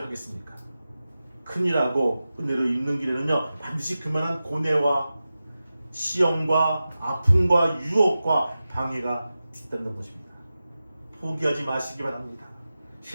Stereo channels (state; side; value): inverted; both; correlation -0.94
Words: 하겠습니까? 큰일하고 은혜로 입는 길에는요, 반드시 그만한 고뇌와 시험과 아픔과 유혹과 방해가 있다는 것입니다. 포기하지 마시기 바랍니다.